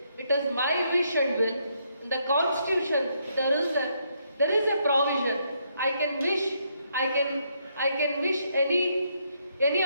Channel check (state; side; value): inverted; both; correlation -0.75